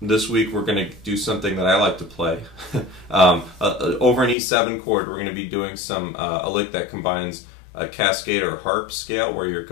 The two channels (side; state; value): right; drops out; at 4.4 s